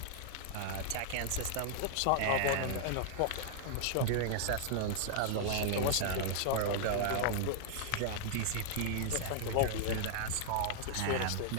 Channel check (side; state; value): both; different; correlation 0.00